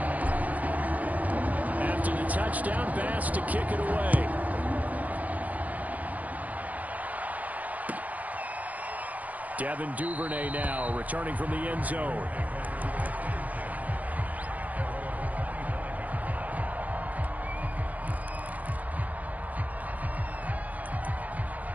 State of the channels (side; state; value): left; late; 0.077 ms